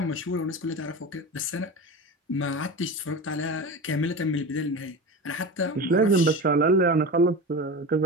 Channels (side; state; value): both; normal; correlation 0.27